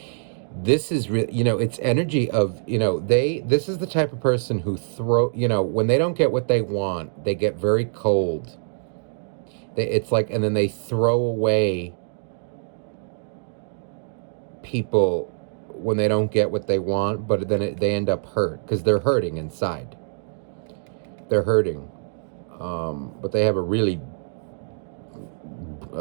This is really, you know, it's energy of, you know, this is the type of person who you know, when they don't get what they want, they get very cold. It's like, and then they throw away people when they don't get what they want, but then they end up hurt because they're hurting inside. They're hurting. But they have a really,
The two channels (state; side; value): silent; left; digital silence